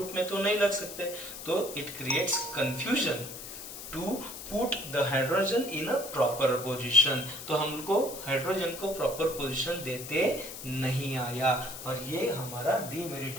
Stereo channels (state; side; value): noise; left; hiss, 10 dB below the sound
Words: में तो नहीं लग सकते, तो it creates confusion to put the hydrogen in a proper position, तो हमको हाइड्रोजन को प्रॉपर पोजीशन देते नहीं आया, और ये हमारा डीमेरिट